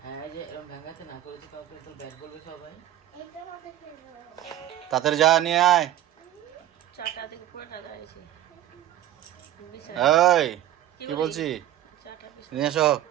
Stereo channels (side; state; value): left; quieter; 12.7 dB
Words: হ্যাঁ, এই যে এরকম ভাঙাতে না করেছে কাউকে তো ব্যাট বলবে সবাই। এটার মধ্যে ফেলবো। তাড়াতাড়ি যা নিয়ে আয়। চাটা থেকে পুরোটা দাঁড়িয়েছে। এই কি বলছি? নিয়ে এসো।